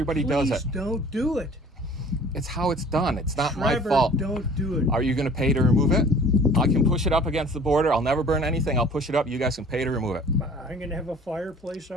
does it. Please don't do it. It's how it's done. It's not my Trevor, fault. don't do it. Are you going to pay to remove it? I can push it up against the border. I'll never burn anything. I'll push it up. You guys can pay to remove it. I'm gonna have a fireplace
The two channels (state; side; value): normal; both; correlation 0.49